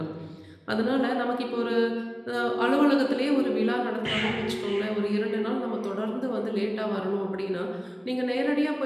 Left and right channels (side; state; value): both; identical; correlation 1.00